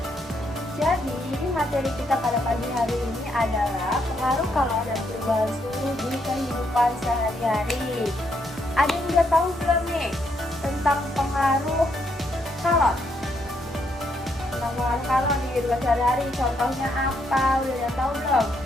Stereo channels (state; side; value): normal; both; correlation 0.75